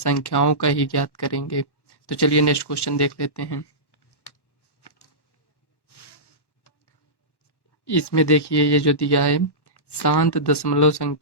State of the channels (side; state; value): right; late; 1.1 ms